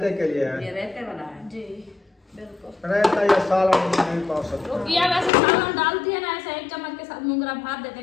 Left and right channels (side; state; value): right; drops out; at 5.3 s